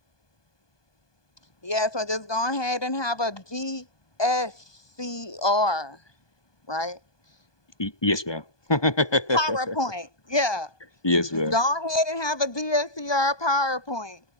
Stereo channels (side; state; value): right; late; 1.2 ms